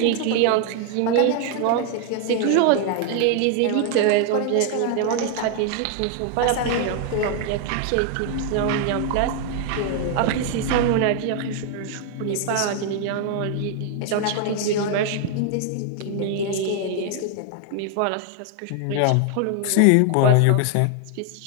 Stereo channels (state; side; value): different; both; correlation 0.00